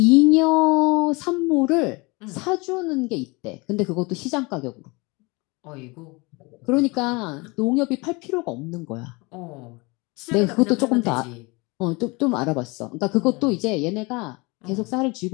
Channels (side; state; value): right; quieter; 26.3 dB